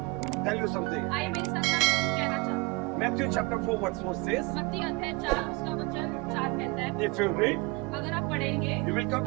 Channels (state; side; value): quieter; left; 25.8 dB